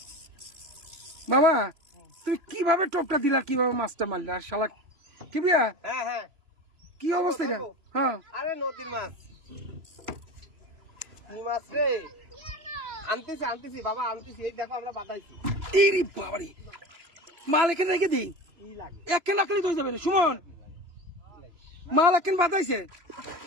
বাবা তুমি কিভাবে টোপটা দিলা, কিভাবে মাছটা মারলে? আর শালা কি বিয়া, হ্যাঁ হ্যাঁ, কি অবস্থা এটা? হ্যাঁ আরে নদীর মাছ, কি মাছ রে, আনতেছি বাবা, আনতেছি, এই দেখো আমরা বাতাইছি। ইরি বাবারি, মাল এখানে রেখে দিই, একখান রাখলেই তো হয়ে যাবে রে সুমন। মাল একখান বাতাইছে।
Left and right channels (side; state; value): left; late; 2.9 ms